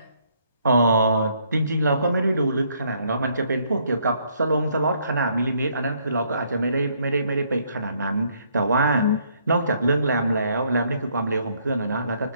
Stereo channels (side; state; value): both; inverted; correlation -0.69